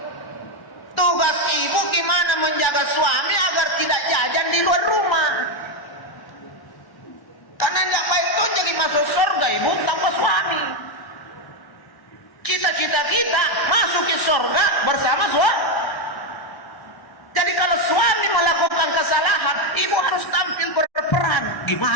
Tugas ibu gimana menjaga suami agar tidak jajan di luar rumah. Karena tidak baik tuh jadi masuk surga ibu tanpa suami. Cita-cita kita masuk ke surga bersama suami. Jadi kalau suami melakukan kesalahan, ibu harus tampil berperan.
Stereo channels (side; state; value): right; late; 1.1 ms